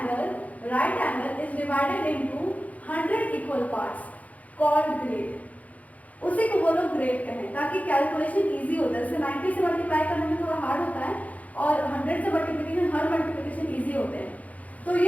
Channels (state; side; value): late; right; 0.070 ms